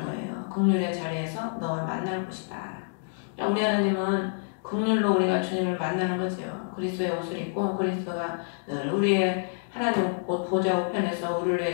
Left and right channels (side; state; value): right; silent; digital silence